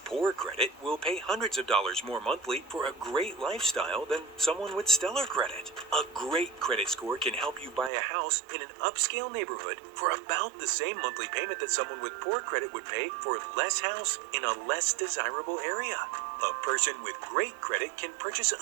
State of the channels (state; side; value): drops out; left; at 7.9 s